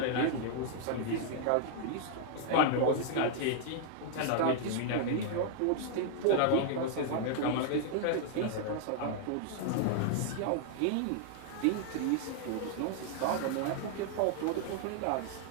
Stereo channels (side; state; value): both; different; correlation -0.01